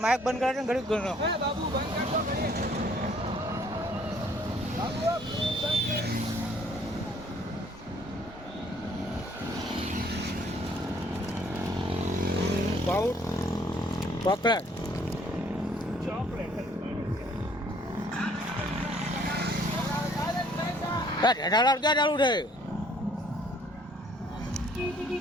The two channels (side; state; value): both; normal; correlation 0.61